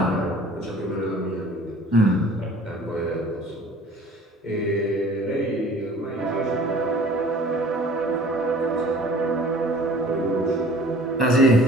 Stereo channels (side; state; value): both; normal; correlation 0.49